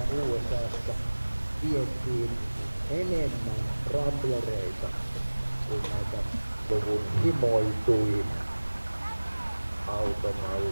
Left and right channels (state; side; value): inverted; both; correlation -1.00